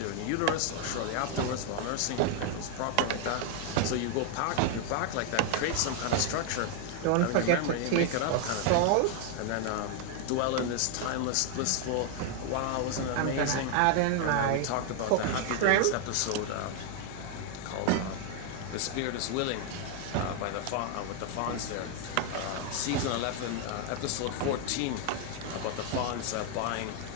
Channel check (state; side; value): different; both; correlation 0.00